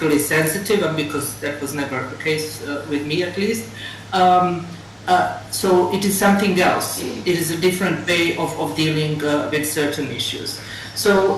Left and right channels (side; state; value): both; identical; correlation 1.00